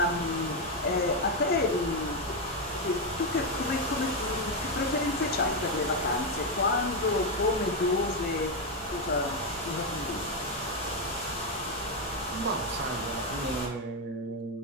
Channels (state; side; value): normal; both; correlation 0.05